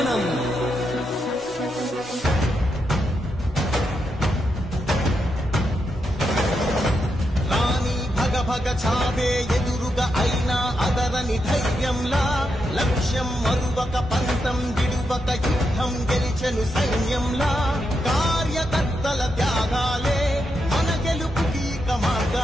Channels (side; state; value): both; normal; correlation 0.83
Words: రాణి భగ భగ చావే ఎదురుగా అయినా అదరని ధైర్యంలా లక్ష్యం మరువక పంతం విడువక యుద్ధం గెలిచెను సైన్యంలా కార్యకర్తల త్యాగాలే మన గెలుపుకి ఇక